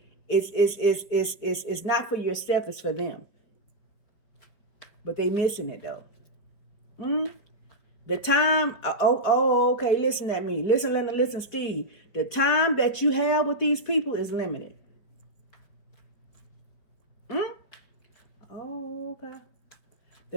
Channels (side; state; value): right; late; 4.8 ms